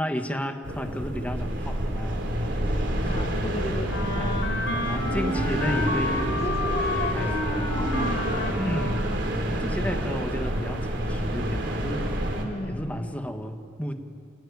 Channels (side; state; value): both; normal; correlation 0.65